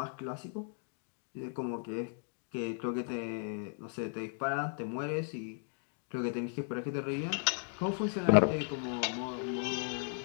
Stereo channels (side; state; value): right; silent; 54 dB below the other